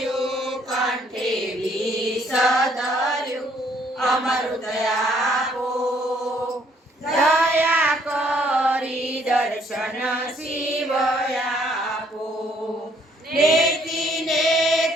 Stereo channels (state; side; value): normal; both; correlation 0.65